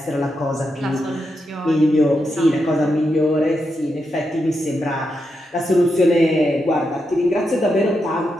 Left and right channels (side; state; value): both; normal; correlation 0.85